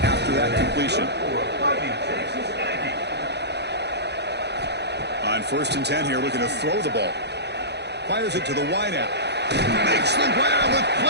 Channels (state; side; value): late; left; 0.49 ms